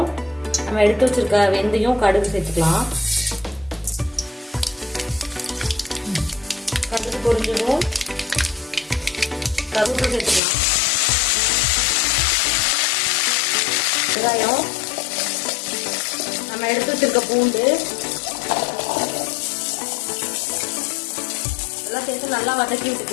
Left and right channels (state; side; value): drops out; right; at 10.4 s